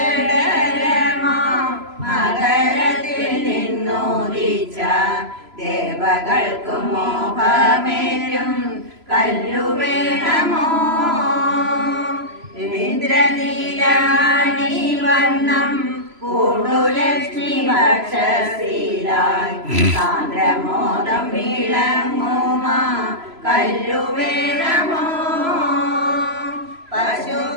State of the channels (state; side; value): late; left; 3.0 ms